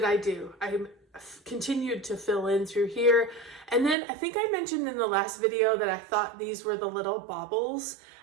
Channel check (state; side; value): drops out; left; at 4.0 s